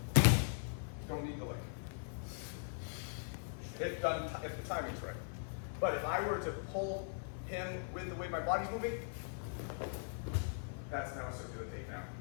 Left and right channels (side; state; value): right; silent; 51 dB below the other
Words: Don't need the leg. If the timing's right. But if I were to pull him with the way my body's moving, that's now a circular takedown,